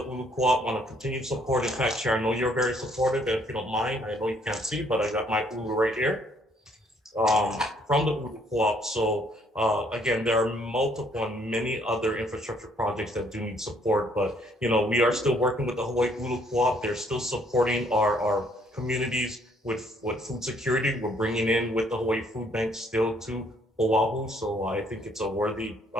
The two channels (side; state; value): both; normal; correlation 0.66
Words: Ulu Co-op, want to continue support. In fact, Chair, I know you're very supportive, and if you don't mind, I know you can't see, but I got my Ulu right here from the Ulu Co-op. So again, there are multiple and many other infrastructure projects that do need support, but you know, we are still working with the Hawaii Ulu Co-op. They're still supporting our communities with food security. We're bringing in with the Hawaii Food Bank still to Oahu. So I think it's a worthy